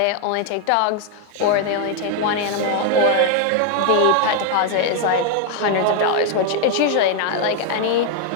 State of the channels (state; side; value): different; both; correlation 0.00